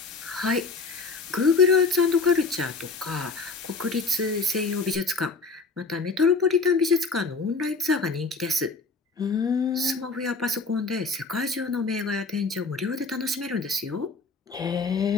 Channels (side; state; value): right; quieter; 4.2 dB